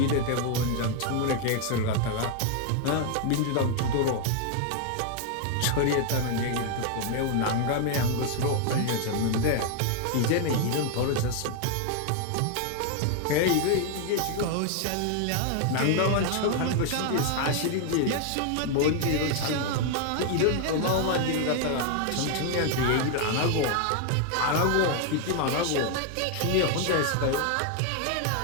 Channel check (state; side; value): different; both; correlation 0.00